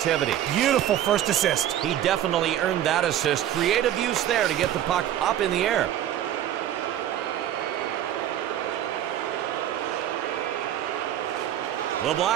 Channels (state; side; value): quieter; left; 11.5 dB